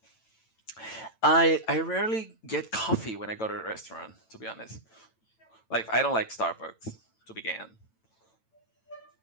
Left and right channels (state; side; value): late; right; 9.0 ms